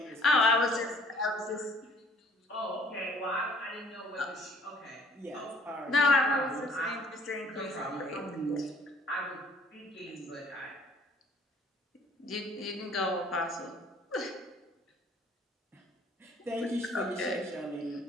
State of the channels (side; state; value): both; normal; correlation 0.58